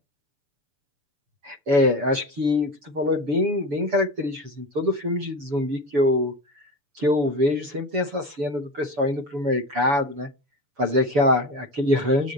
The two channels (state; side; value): late; left; 7.0 ms